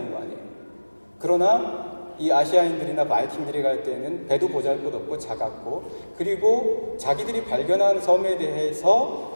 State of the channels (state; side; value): inverted; both; correlation -1.00